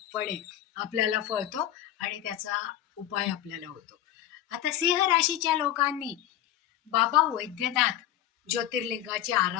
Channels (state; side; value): quieter; right; 12.1 dB